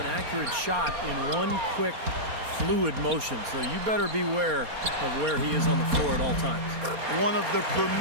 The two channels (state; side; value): late; left; 4.3 ms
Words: accurate shot in one quick, fluid motion. So you better beware of where he is on the floor at all times. One of the